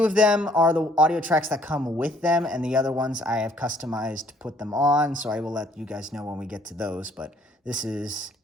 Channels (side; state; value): both; normal; correlation 0.63